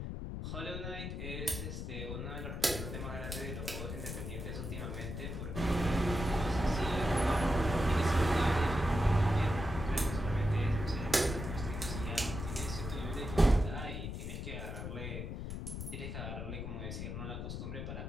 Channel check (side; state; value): left; noise; rumble, 5 dB below the sound